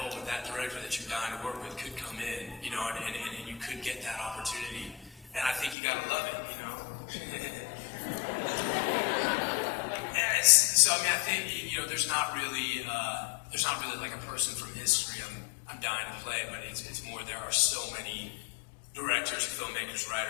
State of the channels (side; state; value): right; drops out; at 5.8 s